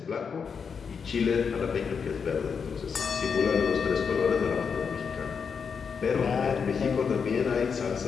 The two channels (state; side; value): quieter; right; 6.2 dB